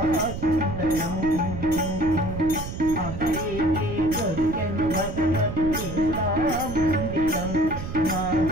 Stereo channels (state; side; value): noise; right; rumble, 8 dB below the sound